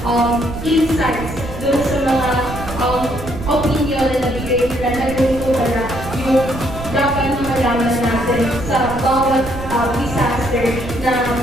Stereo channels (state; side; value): noise; right; rumble, 10 dB below the sound